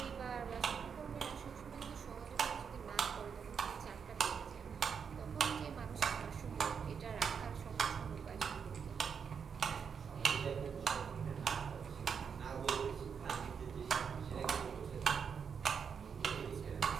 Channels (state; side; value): quieter; left; 6.6 dB